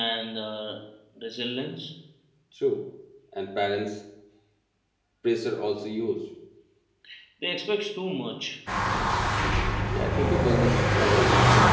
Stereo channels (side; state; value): both; identical; correlation 1.00